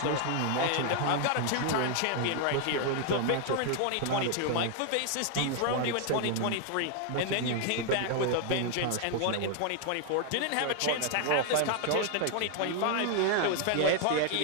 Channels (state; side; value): different; both; correlation 0.00